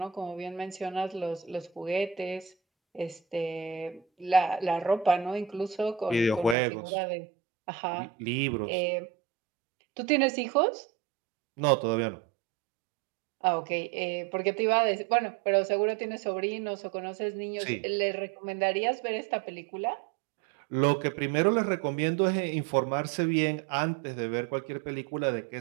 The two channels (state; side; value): drops out; left; at 6.6 s